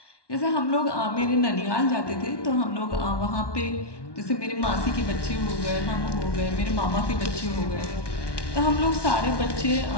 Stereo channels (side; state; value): right; late; 1.1 ms